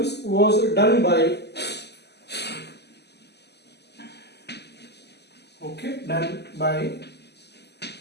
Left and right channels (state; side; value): late; right; 0.49 ms